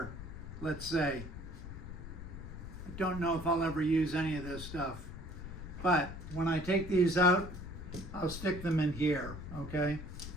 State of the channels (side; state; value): left; noise; rumble, 10 dB below the sound